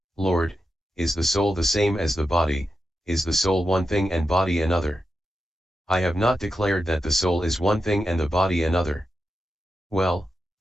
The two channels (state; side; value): normal; both; correlation 0.88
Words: Lord, is the soul the same as the body, is the soul one thing and body another? I have not declared that the soul is one thing and the body another. Well,